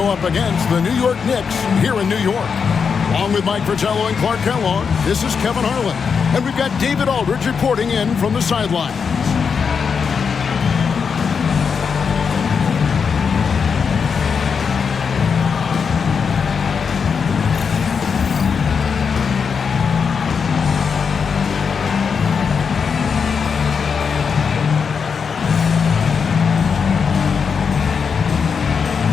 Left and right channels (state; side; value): quieter; right; 6.1 dB